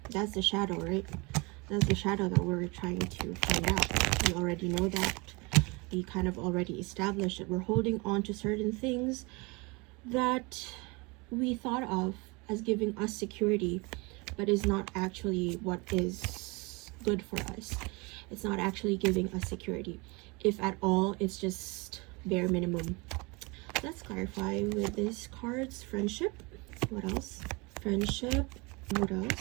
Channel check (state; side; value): quieter; left; 27.3 dB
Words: that's the shadow, right? That's the shadow that we're trying to find out. We already know that. We kind of already established that we're holding on to certain things that we thought of as giving us security, but is not actually what is good for us. It's not actually giving us security. If at all, it's just bare minimum. Let's clarify with these cards. Friendship. What else? Friendship. What